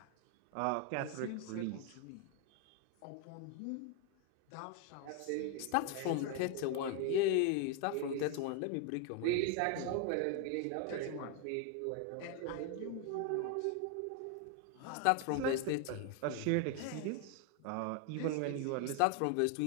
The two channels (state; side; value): different; both; correlation 0.01